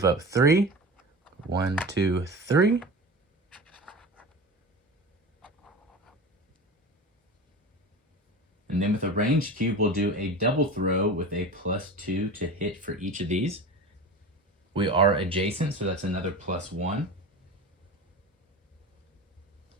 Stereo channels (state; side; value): normal; both; correlation 0.31